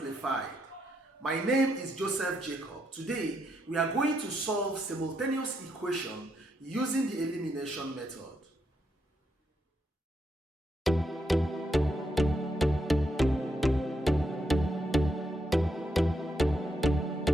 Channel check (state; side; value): normal; both; correlation 0.79